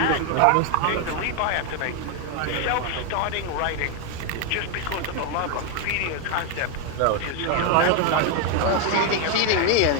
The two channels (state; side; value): different; both; correlation 0.01